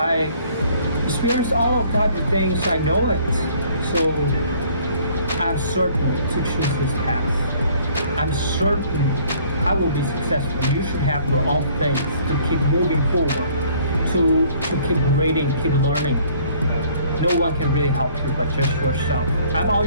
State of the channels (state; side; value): inverted; both; correlation -0.58